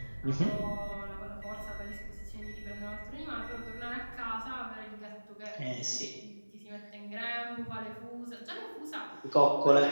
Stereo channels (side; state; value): both; inverted; correlation -1.00